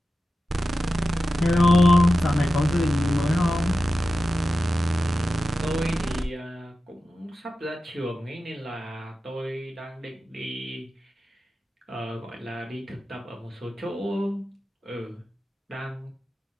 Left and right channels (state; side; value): normal; both; correlation 0.93